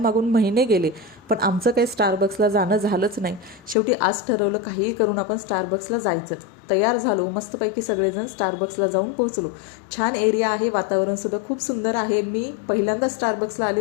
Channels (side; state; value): right; drops out; at 3.8 s